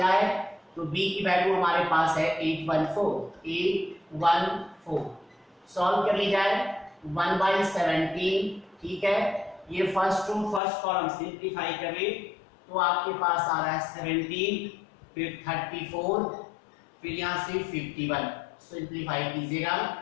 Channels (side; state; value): right; drops out; at 10.6 s